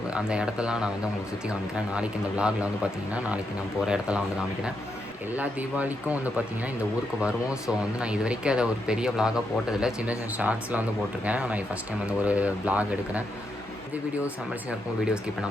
அந்த இடத்தெல்லாம் நான் வந்து உங்களுக்கு சுற்றி காமிக்கிறேன். நாளைக்கு இந்த விலாகில் வந்து பார்த்திங்கன்னா நாளைக்கு நான் போகிற இடத்தெல்லாம் வந்து காமிக்கிறேன். எல்லா தீபாவளிக்கும் வந்து பார்த்திங்கன்னா இந்த ஊருக்கு வருவோம். ஸோ வந்து நான் இது வரைக்கும் அதை ஒரு பெரிய விலாகாக போட்டதில்லை. சின்ன சின்ன ஷார்ட்ஸில் வந்து போட்டிருக்கேன். நான் ஃபஸ்ட் டைம் வந்து ஒரு விலாக் எடுக்கிறேன். இந்த வீடியோஸ் சம்மர்ஸியாக இருக்கும். வீடியோ ஸ்கிப்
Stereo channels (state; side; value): normal; both; correlation 0.82